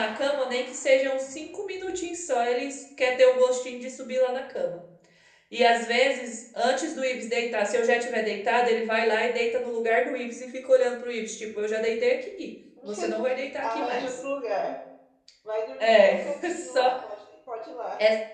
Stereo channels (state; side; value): identical; both; correlation 1.00